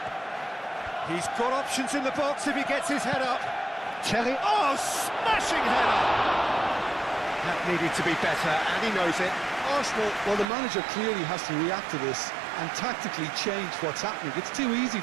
He's got options in the box if he gets his head up. Terrier, oh, smashing header! That needed to be better, and he knows it. Arsenal, well, the manager clearly has to react to this and tactically change what's happening. It's too easy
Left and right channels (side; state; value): left; drops out; at 10.5 s